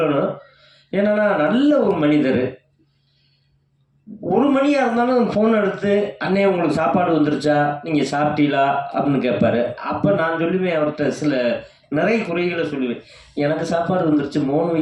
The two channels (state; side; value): identical; both; correlation 1.00